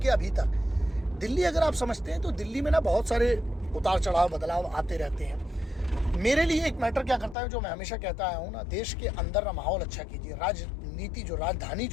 अभी तक दिल्ली अगर आप समझते हैं तो दिल्ली में ना बहुत सारे उतार चढ़ाव बदलाव आते रहते हैं। मेरे लिए एक मैटर क्या करता है जो मैं हमेशा कहता आया हूँ ना, देश के अंदर ना माहौल अच्छा कीजिए। राजनीति जो राजधानी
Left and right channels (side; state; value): right; drops out; at 7.4 s